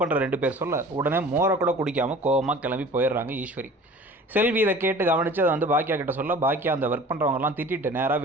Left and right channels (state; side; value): normal; both; correlation 0.44